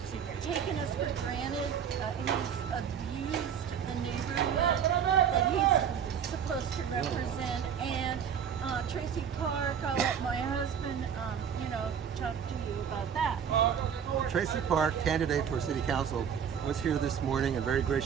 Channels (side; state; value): left; quieter; 7.9 dB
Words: taken us for granted. He's abused the neighborhood that he's supposed to represent. And Tracy Park, I'll let my husband, talk to you about that. Tracy Park, candidate for city council, was here this morning and very